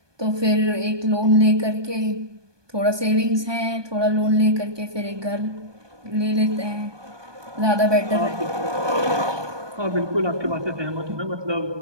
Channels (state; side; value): late; left; 1.2 ms